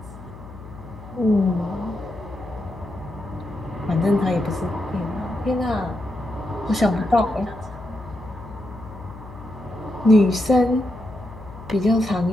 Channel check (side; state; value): left; noise; hum, 16 dB below the sound